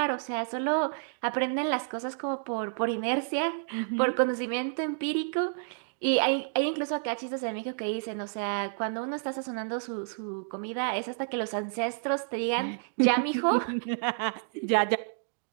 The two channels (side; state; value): left; silent; digital silence